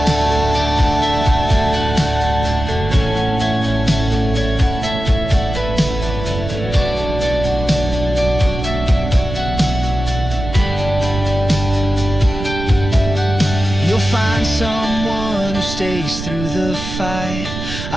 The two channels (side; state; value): right; noise; rumble, 7 dB below the sound